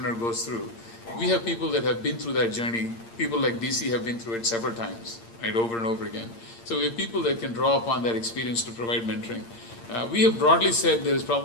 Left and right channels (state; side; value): late; right; 8.7 ms